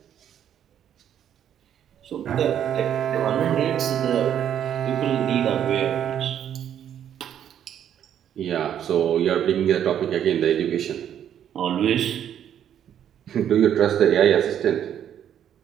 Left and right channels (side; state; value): left; quieter; 9.8 dB